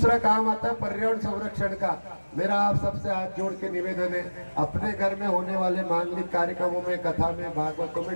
काम आता है पर्यावरण संरक्षण का। मेरा आप सबसे हाथ जोड़ के निवेदन है, अपने घर में होने वाले मांगलिक कार्यक्रमों में, कथा में, भागवतों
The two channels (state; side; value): inverted; both; correlation -1.00